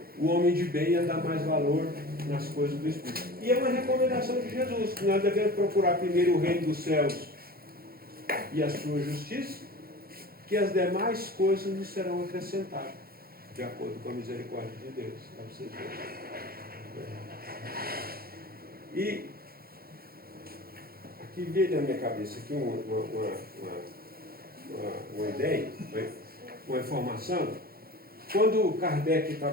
o homem de bem ia dar mais valor nas coisas do Espírito. E é uma recomendação de Jesus, que nós devemos procurar primeiro o reino dos céus e a sua justiça, que as demais coisas nos serão acrescentadas, de acordo com a misericórdia de Deus. Para vocês verem. E aqui veio na minha cabeça aqui uma ideia, uma informação. Quando Kardec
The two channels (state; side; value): late; left; 0.44 ms